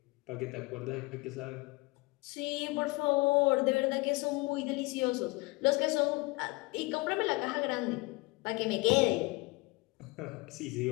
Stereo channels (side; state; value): right; quieter; 24.0 dB